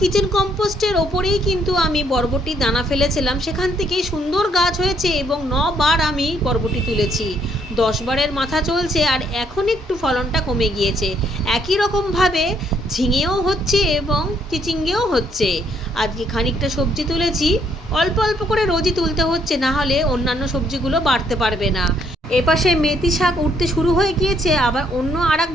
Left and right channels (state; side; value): normal; both; correlation 0.69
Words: কম্পোস্টের ওপরেই কিন্তু আমি বরবটির দানা ফেলেছিলাম, সেখান থেকেই সুন্দর গাছ হয়েছে এবং 9 বার আমি বরবটি তুলেছি। 10 বারের মাথা চলছে আর এখন একটু ফলনটা কমে গিয়েছে। একই রকমভাবে ঝিঙেও হচ্ছে এবং চিচিঙ্গেও হচ্ছে। আজকে খানিকটা সবজি তুলেছি, অল্প অল্প করে রোজই তুলতে হচ্ছে, না হলে অন্যান্য সবজিগুলো বাড়তে পারবে না। এপাশে মেথি শাক উঠতে শুরু হয়ে গিয়েছে, আবার অন্য আর এক